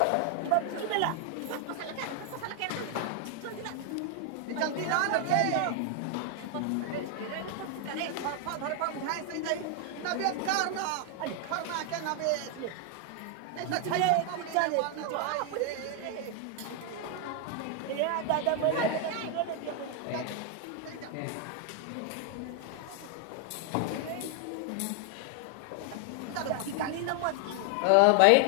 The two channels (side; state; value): both; different; correlation 0.00